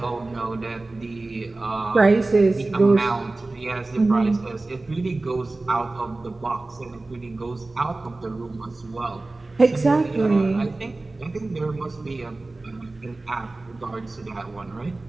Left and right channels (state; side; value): quieter; left; 3.1 dB